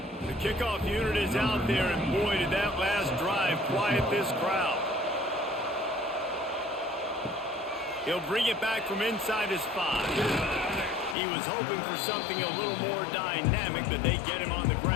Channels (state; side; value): drops out; right; at 11.2 s